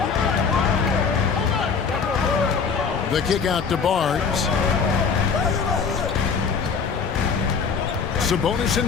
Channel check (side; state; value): right; quieter; 5.8 dB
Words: The kick out to Barnes. Sabonis